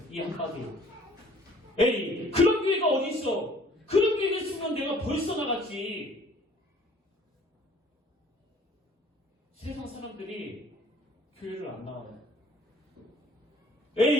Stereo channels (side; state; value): both; normal; correlation 0.55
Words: 이 한마디에. 에이 그런 교회가 어디 있어? 그런 교회가 있으면 내가 벌써 나갔지. 세상 사람들이 교회를 안 나와요.